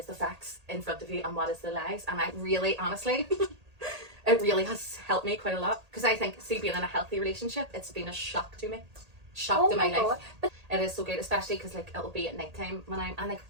the facts in front of you and what is the lies. And I really, honestly, it really has helped me quite a lot because I think, see, being in a healthy relationship, it's been a shock to me, to my life. But it is so good, especially because like it'll be at night time when I'm, and like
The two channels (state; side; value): late; left; 1.8 ms